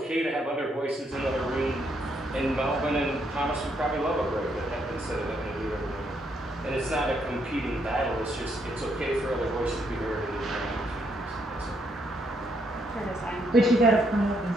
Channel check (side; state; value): both; normal; correlation 0.74